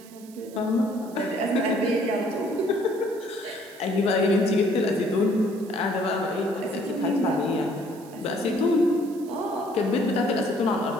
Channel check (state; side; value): noise; right; hiss, 23 dB below the sound